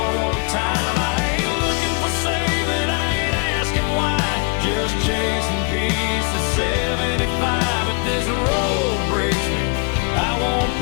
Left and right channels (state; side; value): quieter; right; 32.6 dB